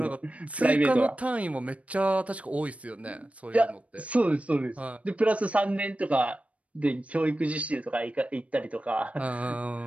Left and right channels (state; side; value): late; left; 0.065 ms